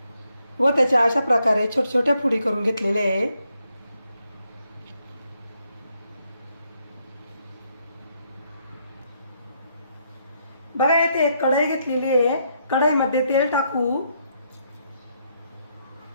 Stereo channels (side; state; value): both; inverted; correlation -0.75